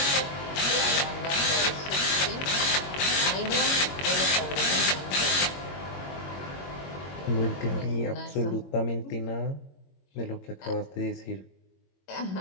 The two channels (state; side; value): late; right; 22 ms